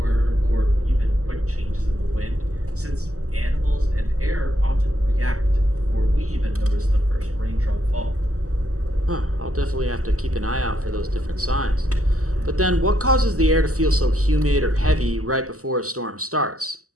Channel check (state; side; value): late; left; 0.65 ms